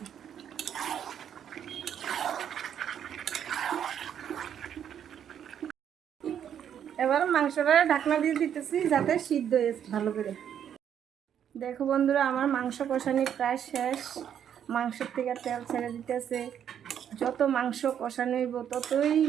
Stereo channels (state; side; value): quieter; left; 9.1 dB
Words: এবার মাংসটা ঢাকনা দিয়ে দিতেছি যাতে সিদ্ধ হয়ে ভালো করে। দেখো বন্ধুরা, আমার মাংস কষানি প্রায় শেষ। মাংসের থেকে তেল ছেড়ে দিতেছে। যত মাংস কষানো হইব ততই